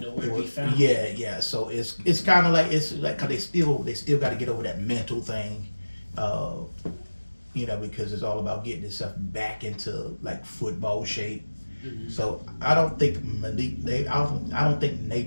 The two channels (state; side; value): inverted; both; correlation -1.00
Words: to be found. yeah. So it's kind of like, it's like, cause they still got to get over that mental thing, you know, because it's all about getting itself back into like football shape. Mm-hmm. So I don't think I don't think